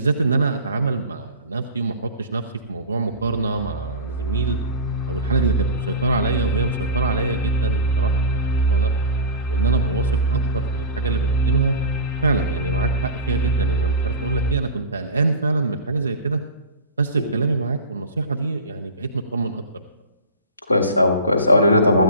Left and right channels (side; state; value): both; inverted; correlation -0.31